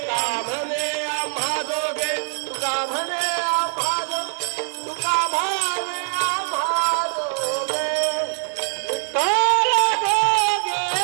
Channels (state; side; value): silent; left; digital silence